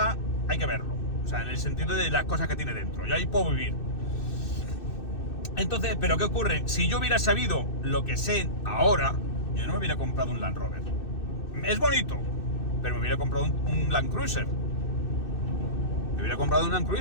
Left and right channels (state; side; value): late; right; 2.6 ms